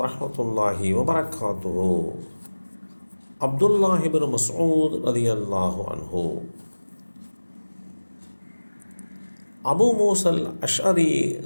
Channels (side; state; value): both; inverted; correlation -1.00